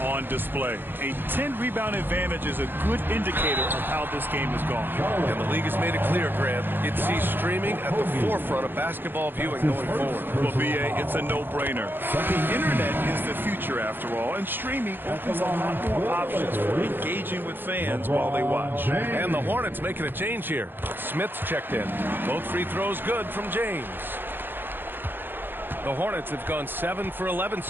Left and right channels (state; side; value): late; left; 0.098 ms